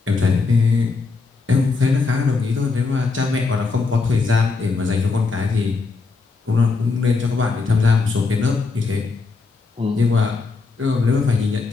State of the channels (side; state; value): right; quieter; 4.3 dB